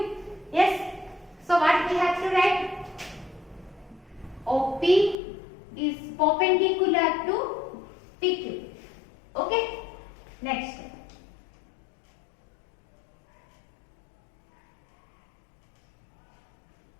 Yes. So what we have to write? OP is perpendicular to PQ. Okay. Next.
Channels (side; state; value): right; drops out; at 5.2 s